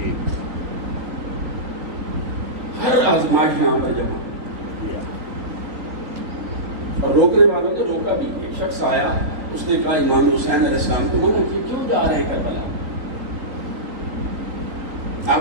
ہر آزمائش یہاں پر جمع. اور روکنے والوں نے روکا بھی. ایک شخص آیا, اس نے کہا امام حسین علیہ السلام کو منع کیا, کیوں جا رہے ہیں کربلا, آپ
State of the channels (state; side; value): late; left; 3.6 ms